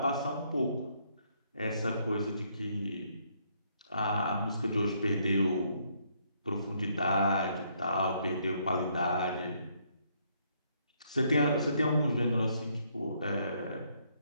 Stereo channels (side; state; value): both; inverted; correlation -0.70